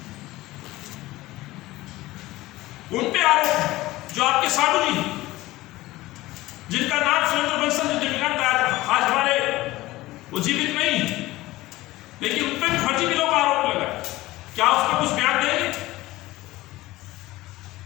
उन पे आरोप, जो आपके साधु जी, जिनका नाम सुरेंद्र बंसल जी दिवंगत आज हमारे वो जीवित नहीं, लेकिन उन पे भी फर्जी बिलों का आरोप लगा। क्या उस पर कुछ बयान देंगे?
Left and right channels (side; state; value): right; quieter; 18.1 dB